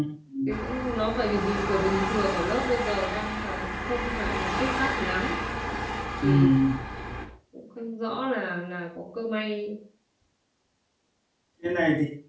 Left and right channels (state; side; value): identical; both; correlation 1.00